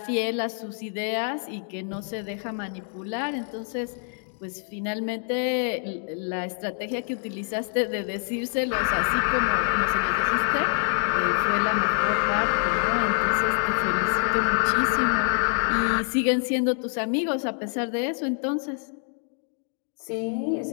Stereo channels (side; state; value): right; silent; 58 dB below the other